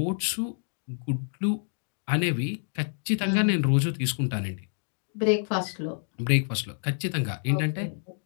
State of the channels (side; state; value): right; silent; 59 dB below the other